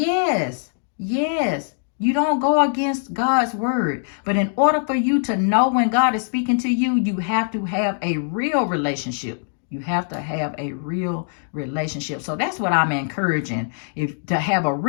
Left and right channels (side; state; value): right; silent; digital silence